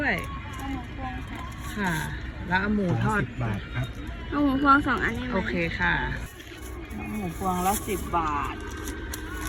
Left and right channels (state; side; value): identical; both; correlation 1.00